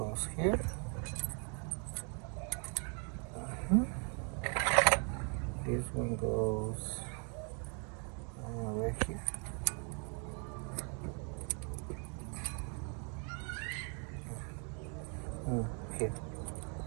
here. This one goes right here. Here.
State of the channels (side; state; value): left; quieter; 38.2 dB